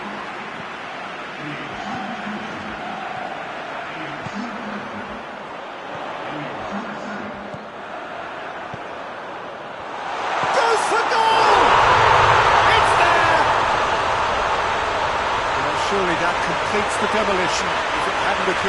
Goes for goal! It's there! Well, surely that completes the demolition if it hadn't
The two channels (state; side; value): identical; both; correlation 1.00